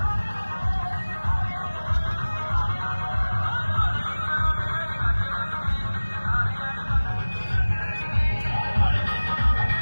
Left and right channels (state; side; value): inverted; both; correlation -1.00